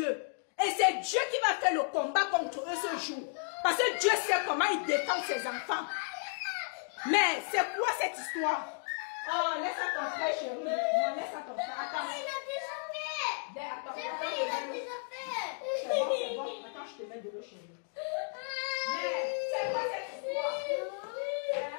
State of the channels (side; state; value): right; silent; 55 dB below the other